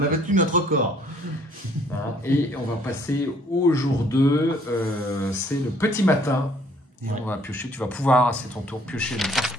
a battu notre record. Et on va passer au jour 2. C'est le petit matin. Et on va piocher. Tu vas pouvoir, c'est ton tour, piocher une carte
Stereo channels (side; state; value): both; normal; correlation 0.61